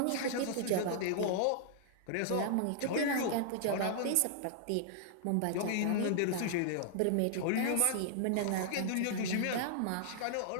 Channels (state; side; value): different; both; correlation -0.01